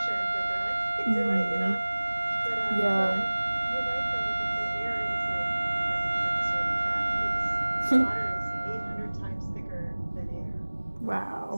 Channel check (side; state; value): both; inverted; correlation -1.00